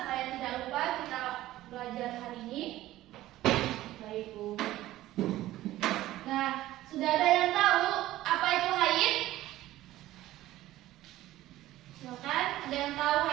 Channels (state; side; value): quieter; left; 15.4 dB